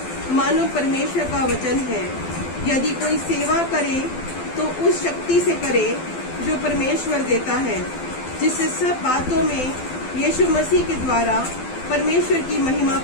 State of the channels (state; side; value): late; right; 12 ms